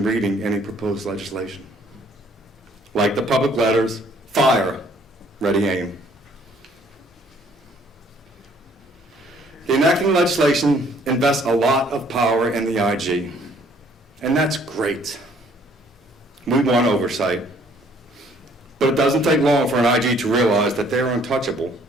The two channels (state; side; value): normal; both; correlation 0.61